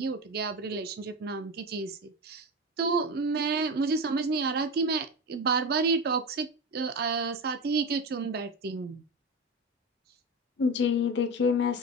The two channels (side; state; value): both; normal; correlation 0.21